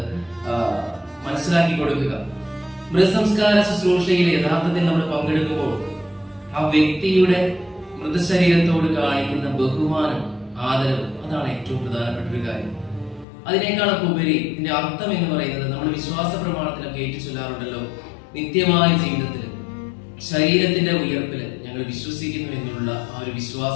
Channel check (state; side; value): drops out; right; at 13.2 s